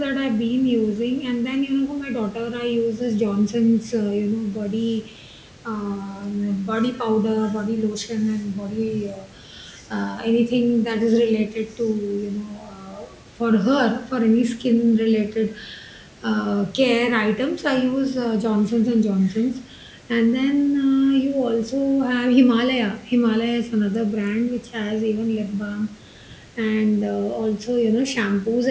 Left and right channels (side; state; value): both; identical; correlation 1.00